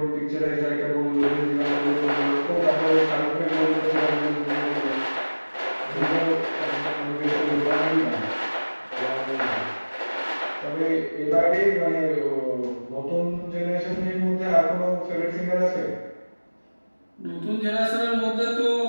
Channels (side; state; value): both; inverted; correlation -1.00